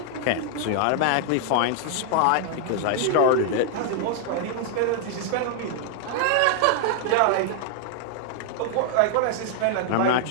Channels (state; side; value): different; both; correlation -0.01